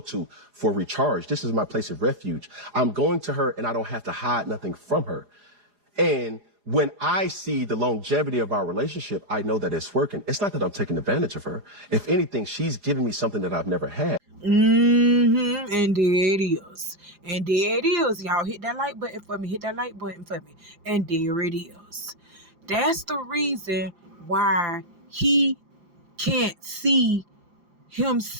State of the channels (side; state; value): left; late; 4.9 ms